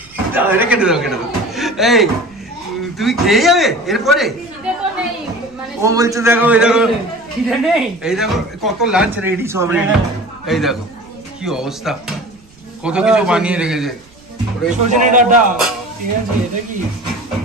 দাও এটা কেটে দাও, কেটে দাও। এই তুমি খেয়ে যাবে এরপরে? ও বলছে দেখো এই দেখো খিদে নেই, এই দেখো কত লাঞ্চ রেডি সব রেডি। এই দেখো কি অবস্থা, কত কিছু বানিয়ে রেখেছে। সজনে ডাটা ঠিক আছে। এটা কি?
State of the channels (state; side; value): noise; right; rumble, 28 dB below the sound